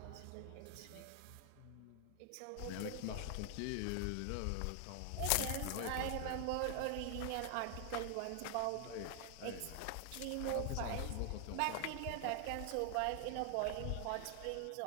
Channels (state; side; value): different; both; correlation 0.00